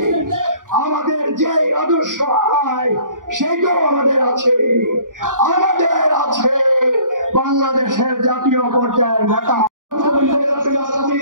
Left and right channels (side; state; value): left; late; 0.89 ms